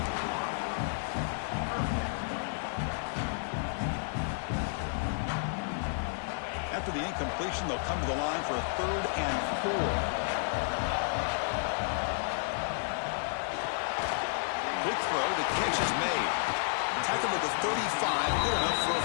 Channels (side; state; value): right; silent; digital silence